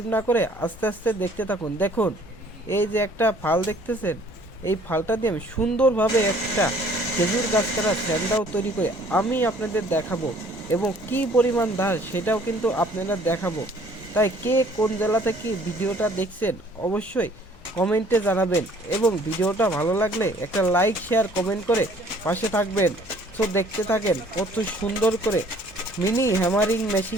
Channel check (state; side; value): normal; both; correlation 0.57